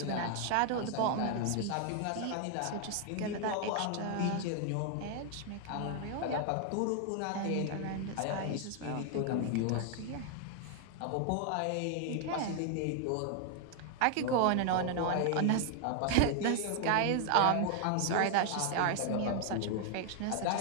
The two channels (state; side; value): different; both; correlation 0.00